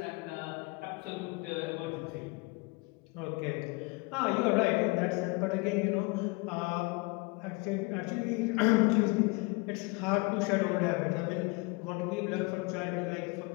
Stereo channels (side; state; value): right; quieter; 27.3 dB